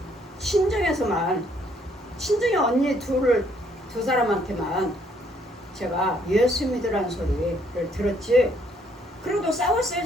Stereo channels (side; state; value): both; normal; correlation 0.67